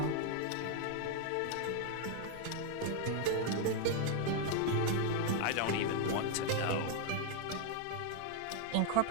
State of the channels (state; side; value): different; both; correlation 0.00